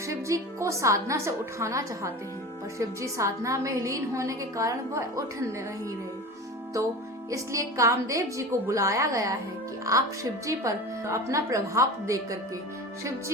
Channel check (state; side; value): normal; both; correlation 0.32